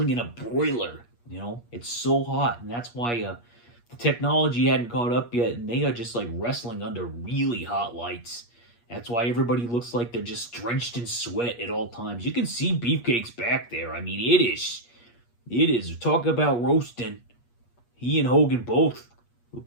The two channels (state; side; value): late; right; 8.4 ms